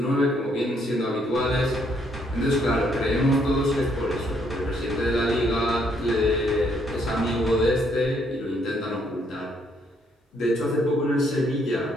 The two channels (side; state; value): both; normal; correlation 0.70